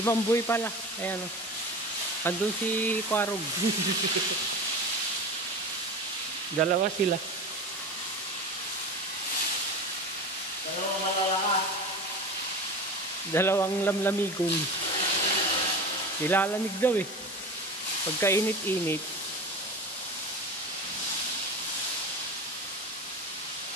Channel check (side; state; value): both; normal; correlation 0.29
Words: Mamboy pala. Ayan oh. Andun si Kwarog. Dalawa sila. Dalawang malalakas. Dalawang lamlamigong. Nilalamig daw eh. Pagkainit-init.